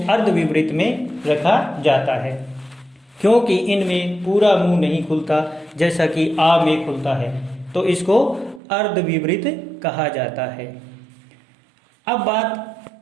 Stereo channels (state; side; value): drops out; left; at 8.6 s